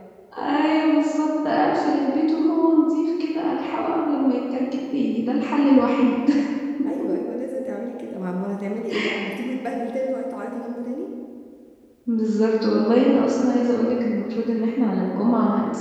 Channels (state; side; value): identical; both; correlation 1.00